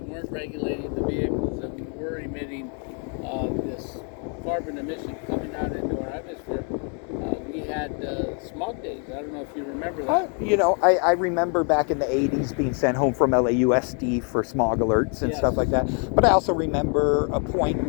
regulating the vehicles and we were emitting this carbon emission coming out into our atmosphere. We had smog days. I don't know if you remember that. You know, I remember back in the 80s being sent home from LAUSD for smog alerts and stuff like that. But I also remember a point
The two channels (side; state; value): right; quieter; 39.7 dB